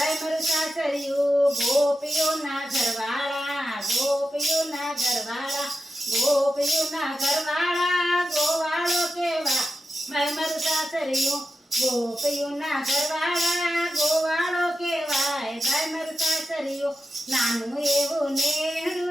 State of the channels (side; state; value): both; normal; correlation 0.91